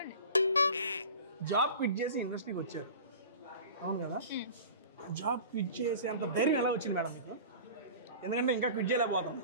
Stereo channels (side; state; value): both; inverted; correlation -0.38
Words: జాబ్ క్విట్ చేసి ఇండస్ట్రీకి వచ్చారు అవును కదా, జాబ్ క్విట్ చేసే అంత ధైర్యం ఎలా వచ్చింది మేడం మీకు? ఎందుకంటే ఇంకా క్విట్ చేయలేకపోతాం.